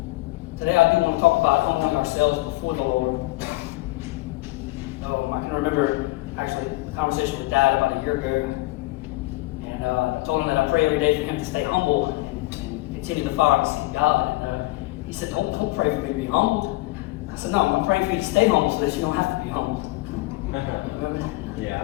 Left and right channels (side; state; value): right; quieter; 20.5 dB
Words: Today I do want to talk about humbling ourselves before the Lord. I can remember actually a conversation with Dad about a year ago, and I told him that I pray every day for him to stay humble and continue the fire to seek God. And he said, don't pray for me to be humbled. I said, no, I'm praying for you to stay humble so that you don't have to be humbled. Remember that? Yeah, I